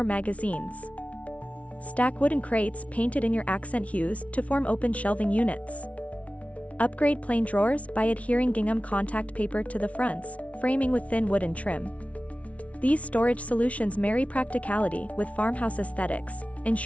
magazines. Stack wooden crates painted in your accent hues to form open shelving units. Upgrade plain drawers by adhering gingham contact paper to the fronts, framing with thin wooden trim. These storage solutions marry practicality with farmhouse aesthetics,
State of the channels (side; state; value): right; late; 0.065 ms